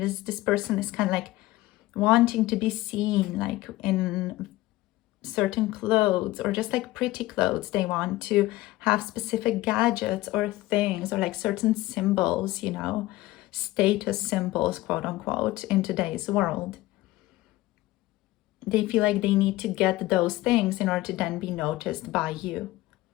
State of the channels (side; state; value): right; quieter; 17.8 dB